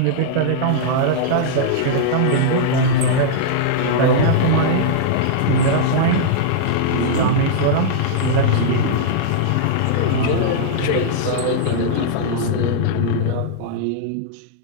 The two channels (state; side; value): different; both; correlation -0.02